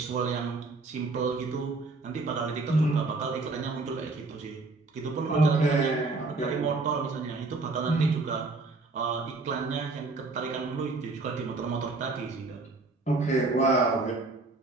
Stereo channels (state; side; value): quieter; left; 3.5 dB